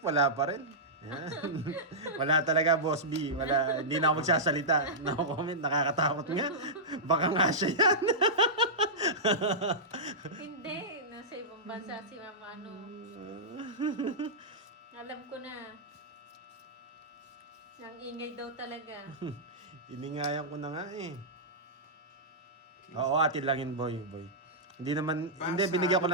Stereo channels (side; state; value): both; normal; correlation -0.13